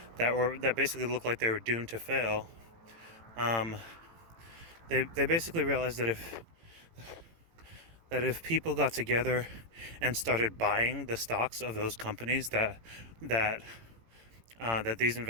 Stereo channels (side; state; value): left; late; 18 ms